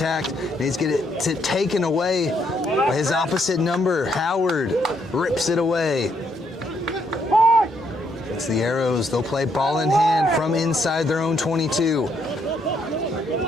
And he's getting it taken away by his opposite number. Howard rips it away. It's the Arrows. They'll play ball in hand from inside their own 22.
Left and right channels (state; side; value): normal; both; correlation 0.73